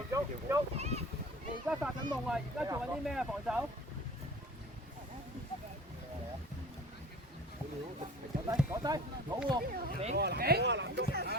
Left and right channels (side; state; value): both; normal; correlation 0.42